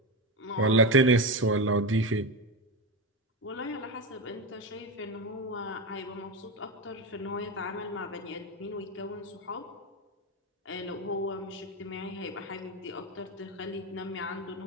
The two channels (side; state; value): both; normal; correlation 0.16